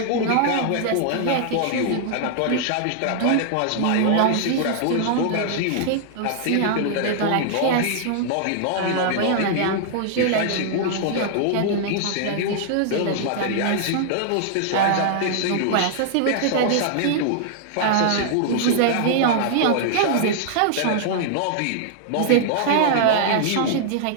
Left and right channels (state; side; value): different; both; correlation -0.01